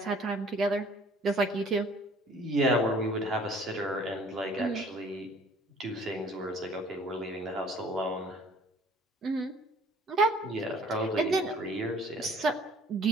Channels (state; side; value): normal; both; correlation 0.54